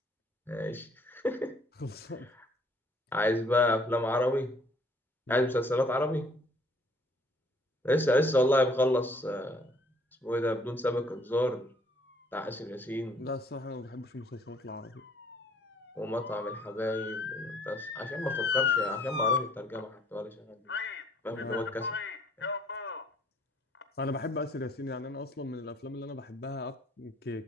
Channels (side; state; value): both; normal; correlation 0.61